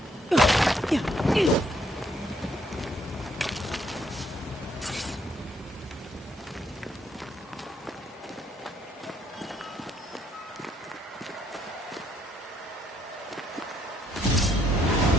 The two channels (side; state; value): both; normal; correlation 0.70